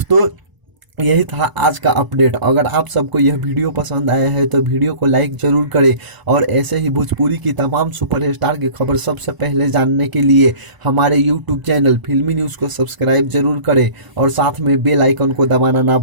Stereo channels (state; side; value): late; left; 1.0 ms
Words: यही था आज का अपडेट। अगर आप सबको यह वीडियो पसंद आया है तो वीडियो को लाइक जरूर करें और ऐसे ही भोजपुरी की तमाम सुपरस्टार की खबर सबसे पहले जानने के लिए हमारे यूट्यूब चैनल फिल्मी न्यूज़ को सब्सक्राइब जरूर करें और साथ में बेल आइकन को दबाना ना